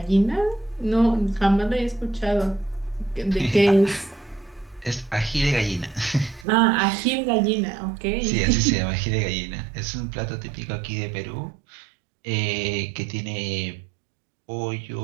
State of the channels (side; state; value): left; drops out; at 6.5 s